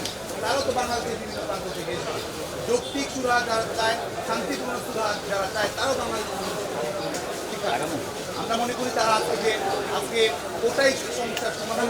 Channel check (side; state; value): both; identical; correlation 1.00